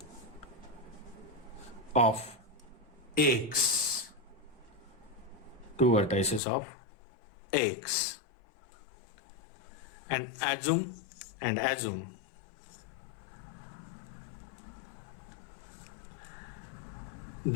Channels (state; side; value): drops out; right; at 6.4 s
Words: of X. Two vertices of X. And assume